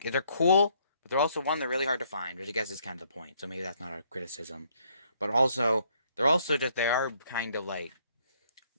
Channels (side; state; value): both; inverted; correlation -0.68